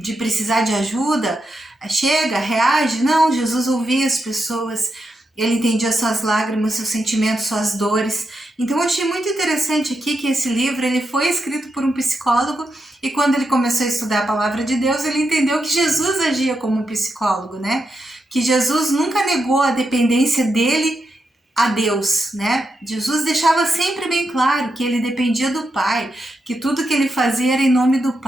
precisar de ajuda, chega, reage. Não, Jesus ouvia as pessoas, ele entendia suas lágrimas, seus sentimentos, suas dores. Então eu achei muito interessante aqui que esse livro ele foi escrito por um psicólogo, e quando ele começou a estudar a palavra de Deus, ele entendeu que Jesus agia como um psicólogo, né? Que Jesus nunca negou a dependência dele a Deus, né? Jesus deixava sempre bem claro que ele dependia do Pai, que tudo que ele fazia era em nome do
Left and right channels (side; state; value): both; normal; correlation 0.85